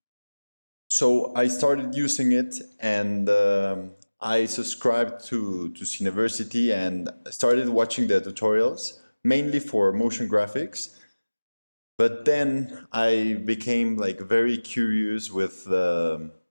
So I started using it, and I subscribed to Cineversity and started watching the tutorials, mainly for motion graphics. But then I became like very curious with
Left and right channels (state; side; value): inverted; both; correlation -1.00